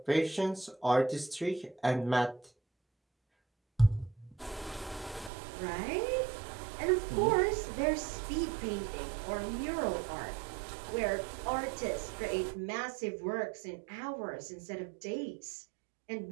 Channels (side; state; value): left; drops out; at 5.3 s